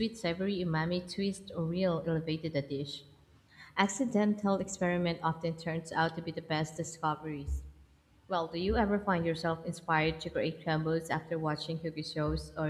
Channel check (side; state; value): both; identical; correlation 1.00